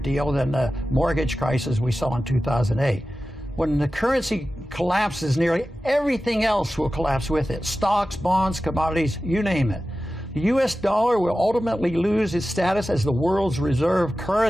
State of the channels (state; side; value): normal; both; correlation 0.94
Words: than the mortgage crisis we saw in 2008. When the currency collapses, nearly everything else will collapse with it. Stocks, bonds, commodities, you name it. The U.S. dollar will ultimately lose its status as the world's reserve